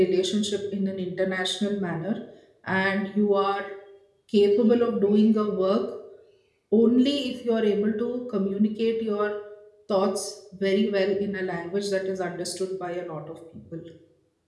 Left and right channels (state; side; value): identical; both; correlation 1.00